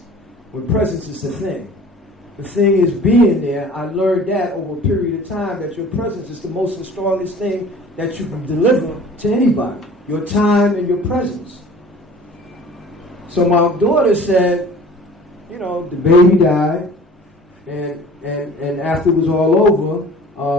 the thing. The thing is being there. I learned that over a period of time, that your presence is the most and strongest thing that you can deliver to anybody. Your time and your presence. So my daughter said, the baby died, and after it was all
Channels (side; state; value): both; normal; correlation 0.46